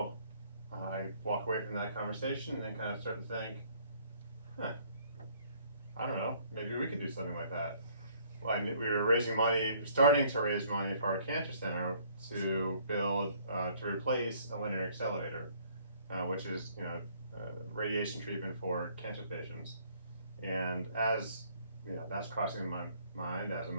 I walk away from that conversation and then kind of start to think, I don't know, maybe we could do something like that. Well, we were raising money, starting to raise money for our cancer center to build, to replace a linear accelerator, which is, radiation treatment for cancer patients. And as, that's crossing my mind as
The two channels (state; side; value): inverted; both; correlation -0.61